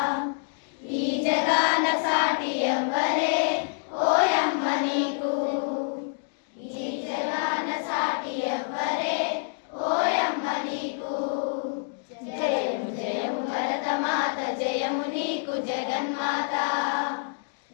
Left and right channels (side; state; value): right; silent; digital silence